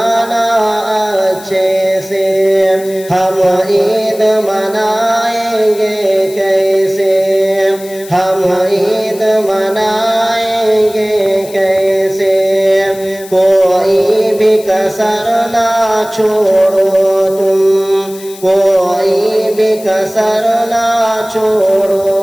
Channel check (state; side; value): noise; left; hiss, 18 dB below the sound